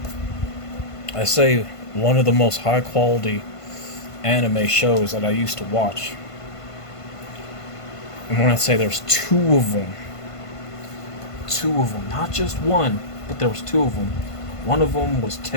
I say one of the most high quality anime shows that I used to watch. And when I say there's two of them, not just one, but there was two of them. One of them was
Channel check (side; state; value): right; late; 1.5 ms